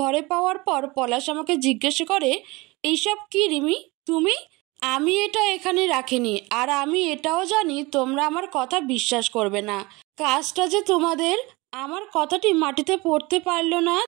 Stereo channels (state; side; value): quieter; left; 23.5 dB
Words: ঘরে পাওয়ার পর পলাশ আমাকে জিজ্ঞেস করে, এইসব কি রিমি তুমি? আমি এটা এখানে রাখিনি, আর আমি এটাও জানি তোমরা আমার কথা বিশ্বাস করবে না। কাজটা যে তোমাদের। আমার কথাটি মাটিতে পড়তে পারল না।